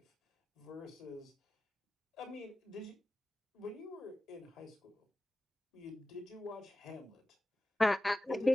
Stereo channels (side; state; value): both; normal; correlation 0.95